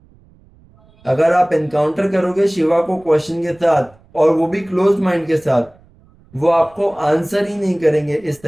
अगर आप एनकाउंटर करोगे शिवा को क्वेश्चन के साथ, और वो भी क्लोज माइंड के साथ, वो आपको आंसर ही नहीं करेंगे इस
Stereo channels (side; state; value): right; noise; rumble, 29 dB below the sound